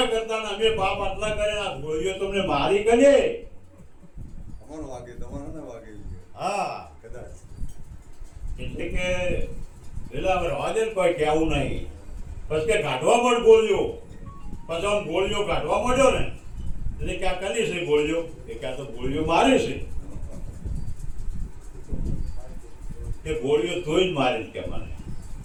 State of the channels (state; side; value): identical; both; correlation 1.00